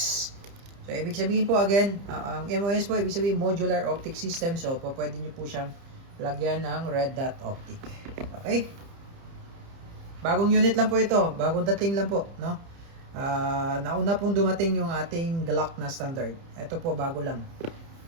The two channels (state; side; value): late; left; 30 ms